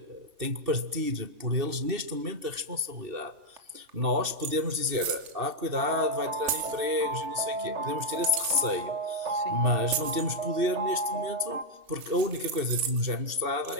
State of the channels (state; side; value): late; left; 2.7 ms